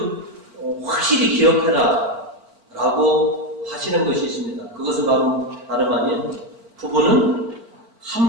확실히 기억해라 라고 하시는 것이 있습니다. 그것은 바로 다름 아닌 부부는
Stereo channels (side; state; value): left; late; 4.5 ms